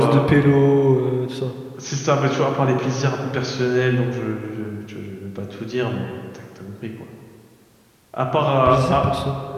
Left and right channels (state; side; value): identical; both; correlation 1.00